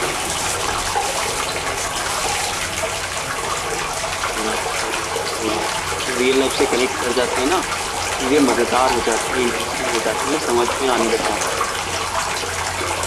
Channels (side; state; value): both; identical; correlation 1.00